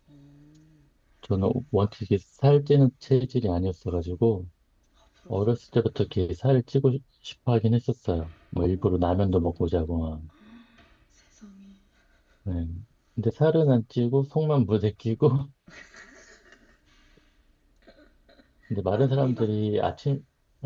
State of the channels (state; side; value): identical; both; correlation 1.00